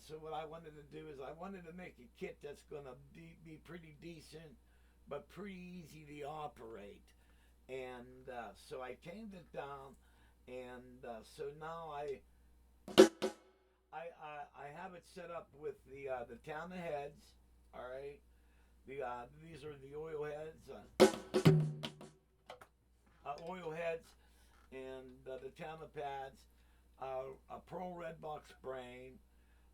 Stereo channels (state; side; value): identical; both; correlation 1.00